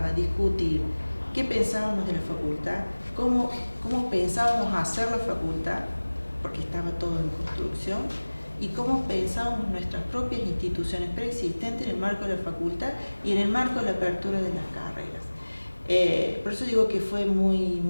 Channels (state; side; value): inverted; both; correlation -1.00